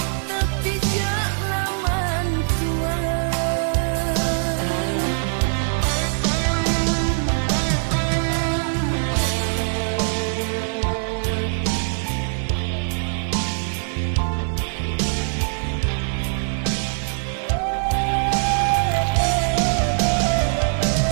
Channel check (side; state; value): left; silent; 61 dB below the other